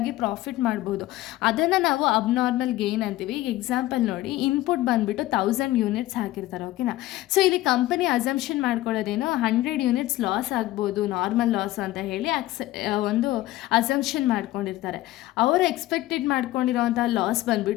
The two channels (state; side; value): quieter; right; 16.4 dB